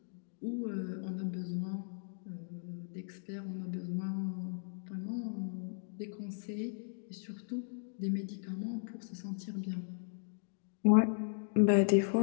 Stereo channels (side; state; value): right; silent; digital silence